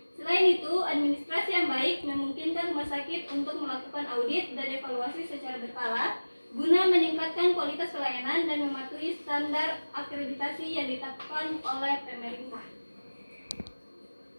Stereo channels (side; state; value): both; inverted; correlation -1.00